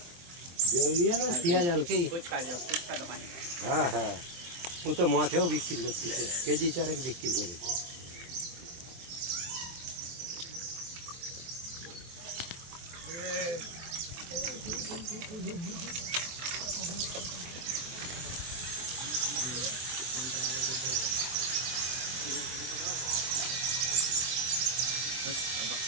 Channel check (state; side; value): late; left; 23 ms